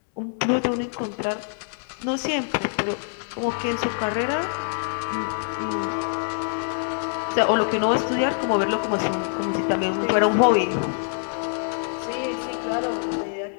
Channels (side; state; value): right; silent; digital silence